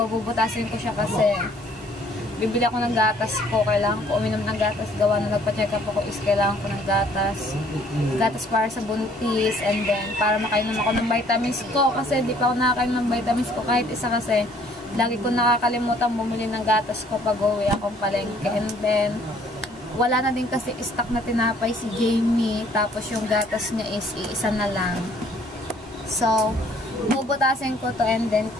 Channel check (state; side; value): normal; both; correlation 0.60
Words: bubutasin ko siya kasi, bibili ako ng gatas ko, kailangan ko uminom ng gatas, gawa na nagpa-check up ako is kailangan ko ng gatas para sa buntis, and then para makainom ako ng vitamins ko, kasi di pa ako nakakainom ng vitamins ko kahit isa, kasi lagi ko nakakalimutan bumili ng gatas ko pag uwi akong palengke, and then wala na din kasi stock na tinapay si Jamie, tapos yung gatas niya is iisa na lang. So, bubutasin ko to, and then